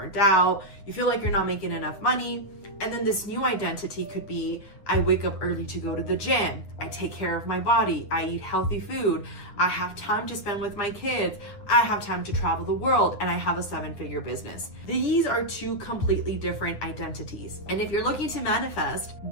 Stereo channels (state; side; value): late; right; 9.8 ms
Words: out, you feel like you're not making enough money. And then this new identity could be, I wake up early to go to the gym, I take care of my body, I eat healthy food, I have time to spend with my kids, I have time to travel the world, and I have a 7-figure business. These are 2 completely different identities. And if you're looking to manifest,